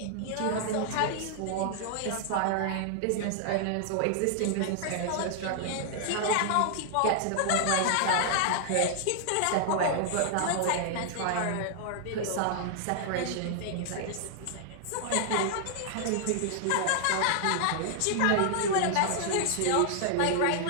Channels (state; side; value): different; both; correlation -0.01